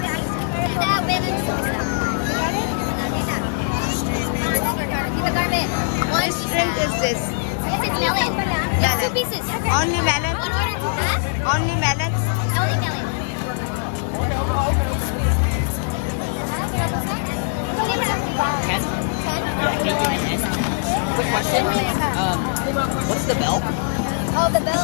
Which shrimp is this? This is melon. It's 2 pieces. Only melon? One order, huh? Only melon? Only melon. What's the belt? Oh, the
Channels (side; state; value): right; silent; digital silence